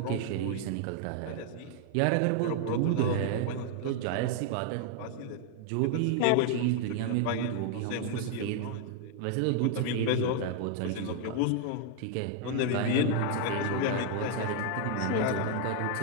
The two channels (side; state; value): both; different; correlation 0.00